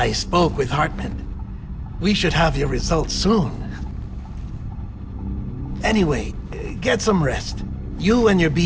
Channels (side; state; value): both; identical; correlation 1.00